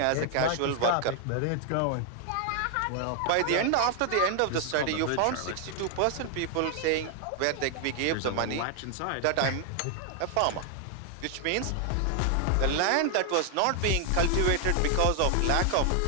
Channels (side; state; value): both; different; correlation 0.00